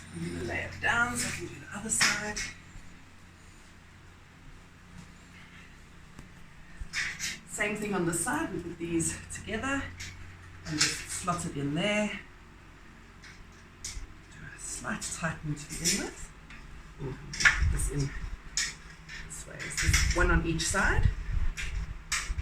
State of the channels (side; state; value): both; identical; correlation 1.00